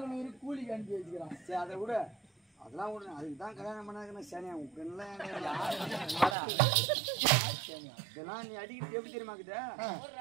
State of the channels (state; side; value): drops out; left; at 6.4 s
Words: கூலிக்கு அனுப்பி வச்சுக்கிறான். சரி அதை விட அதெல்லாம் விட அதுக்கு தான் கல்யாணம் பண்ணாதுன்னா சனியா உங்கெல்லாம் இதெல்லாம் நீ அடிக்கிட்டு எப்படி தெரியுமாக்குத